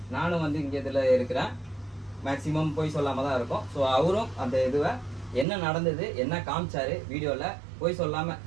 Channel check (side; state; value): left; drops out; at 5.5 s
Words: நானும் இங்க இதுல இருக்கிறேன். மேக்சிமம் போய் சொல்லாம தான் இருக்கும். ஸோ அவரும் அந்த இதுவை என்ன நடந்தது, என்ன காமிச்சாரு வீடியோல, போய் சொல்லாம